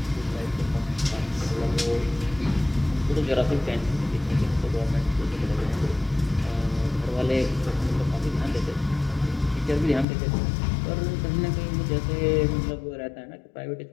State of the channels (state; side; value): drops out; right; at 10.1 s